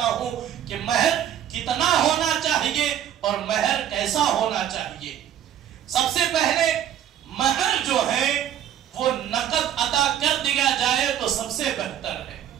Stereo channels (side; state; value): left; quieter; 10.5 dB